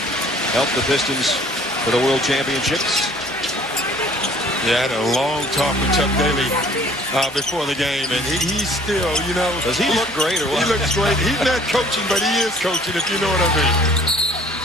helped the Pistons for the World Championships. Yeah, I had a long talk with Chuck Daly before the game, and he's still, you know. Does he look great or what? He looks great. He's not coaching, but he is coaching, if you know what I mean.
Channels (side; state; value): both; normal; correlation 0.54